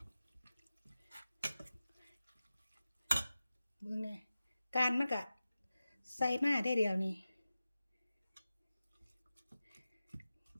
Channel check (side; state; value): both; inverted; correlation -0.95